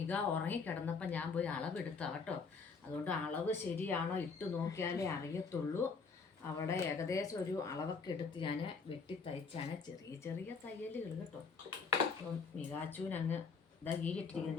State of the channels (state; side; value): quieter; right; 4.9 dB